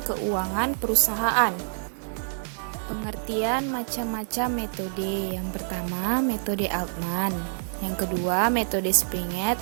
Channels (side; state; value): left; silent; 60 dB below the other